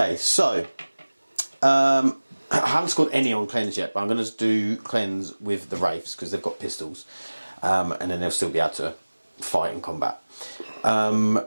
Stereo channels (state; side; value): inverted; both; correlation -1.00